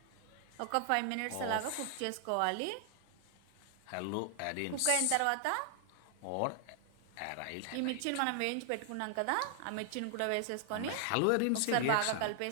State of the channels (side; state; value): both; different; correlation 0.00